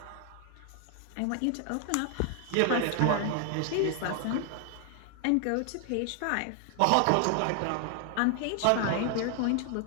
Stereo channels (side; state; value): both; different; correlation 0.00